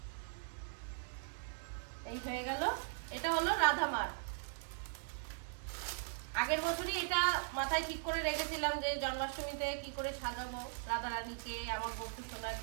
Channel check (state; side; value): silent; left; digital silence